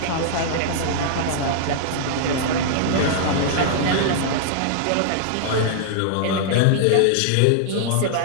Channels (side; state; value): both; different; correlation -0.01